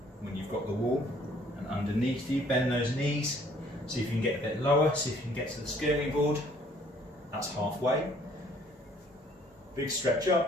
When you've got the wall, and underneath you, bend those knees. See if you can get a bit lower, see if you can get to the skirting board. That's halfway. Big stretch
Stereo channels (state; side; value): normal; both; correlation 0.60